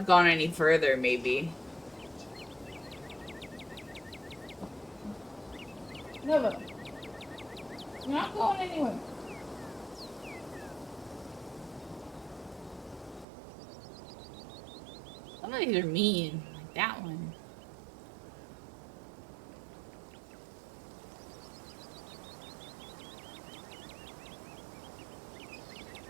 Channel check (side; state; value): left; drops out; at 13.2 s